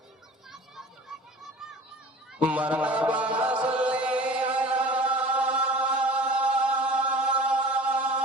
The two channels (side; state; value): both; normal; correlation 0.42